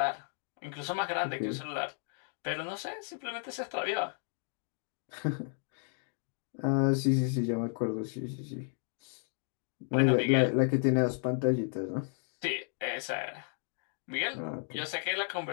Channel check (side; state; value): right; silent; 55 dB below the other